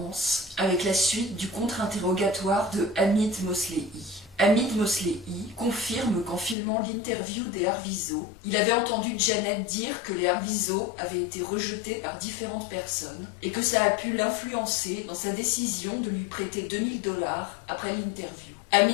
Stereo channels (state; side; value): drops out; right; at 6.6 s